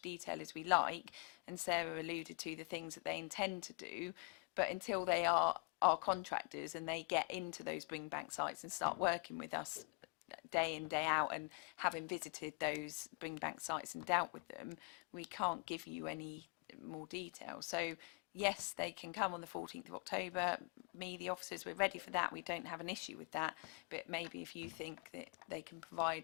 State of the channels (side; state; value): right; quieter; 34.2 dB